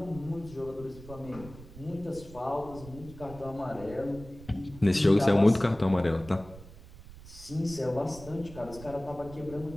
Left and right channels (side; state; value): right; noise; rumble, 17 dB below the sound